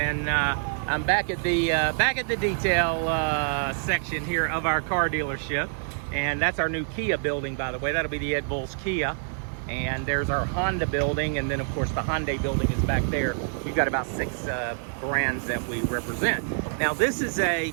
I'm back at the detail section here of our car dealership, and that's our new Kia building, by the way. That'll be the Ed Volz Kia, and there's our Honda building, and then of course the Hyundai building is back there. We've got about 6 brands that we represent. Now this is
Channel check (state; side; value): silent; left; digital silence